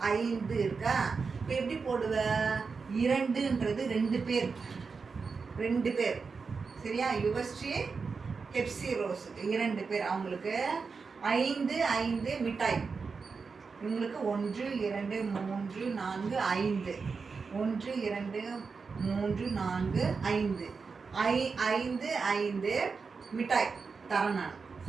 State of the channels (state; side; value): quieter; left; 4.9 dB